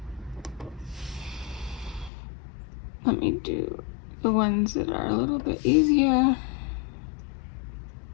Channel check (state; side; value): drops out; right; at 2.1 s